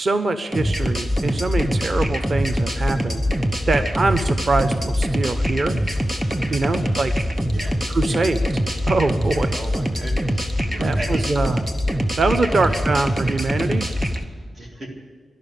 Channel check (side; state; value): both; normal; correlation 0.92